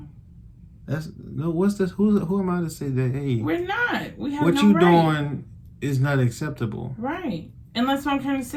That's no. What's this? Who am I to say that? Hey, we're not. We have what no you right. doing is not acceptable. Right. And that's what I'm trying to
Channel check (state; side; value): identical; both; correlation 1.00